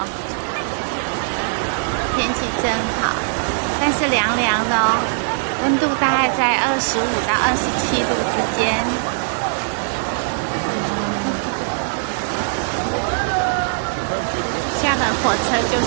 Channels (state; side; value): silent; left; 65 dB below the other